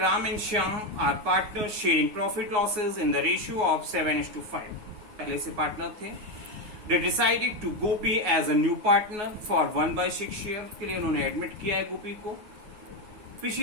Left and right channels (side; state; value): left; late; 9.5 ms